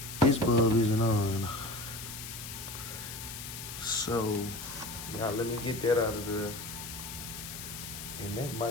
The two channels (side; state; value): left; noise; hiss, 9 dB below the sound